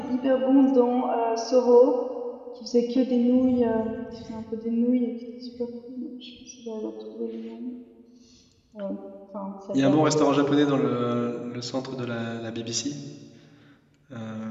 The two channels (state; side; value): identical; both; correlation 1.00